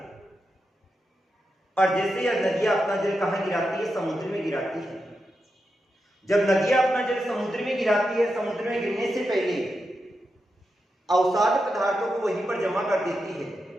और जैसे यह नदियां अपना जल कहां गिराती है, समुद्र में गिराती है। जब नदियां अपना जल समुद्र में गिराती है, समुद्र में गिरने से पहले अवसाद पदार्थों को वहीं पर जमा कर देती है,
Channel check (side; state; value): both; normal; correlation 0.87